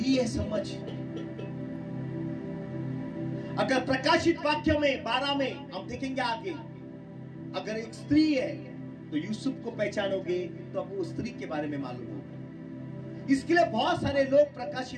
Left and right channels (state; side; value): identical; both; correlation 1.00